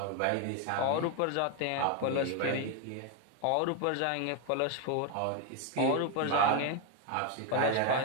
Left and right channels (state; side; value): different; both; correlation 0.01